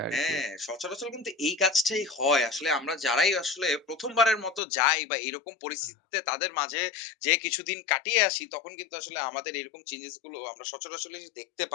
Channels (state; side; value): drops out; right; at 4.6 s